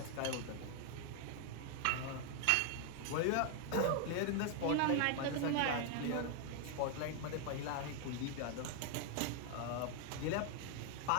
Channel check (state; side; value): different; both; correlation 0.00